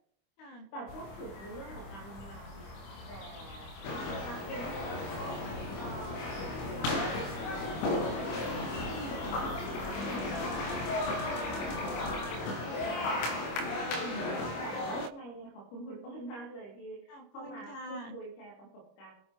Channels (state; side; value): late; right; 25 ms